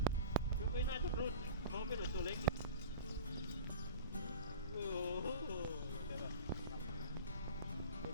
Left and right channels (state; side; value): inverted; both; correlation -0.36